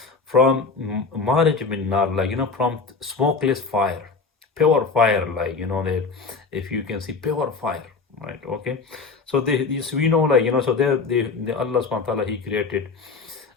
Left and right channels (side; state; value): right; quieter; 4.6 dB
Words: from marij min nar, like, from smokeless fire, pure fire, like, that if you can see pure fire, right? Okay, so this we know, like, so the Allah subhanahu wa ta'ala, he created